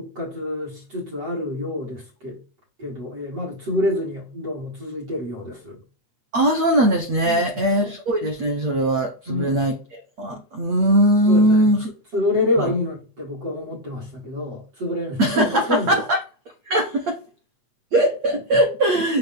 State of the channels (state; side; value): late; left; 8.5 ms